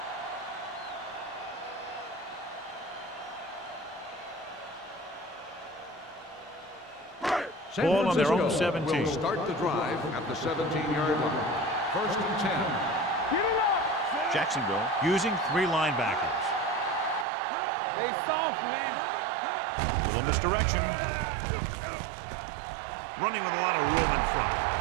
Ball on their own 17. Will start the drive at the 17-yard line. First and 10. Jacksonville using 3 linebackers. They soft, man. Little misdirection. Running with a lot of room in front.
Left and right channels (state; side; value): drops out; left; at 17.2 s